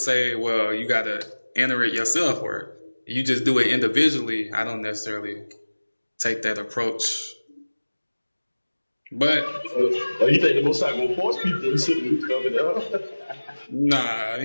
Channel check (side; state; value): both; inverted; correlation -1.00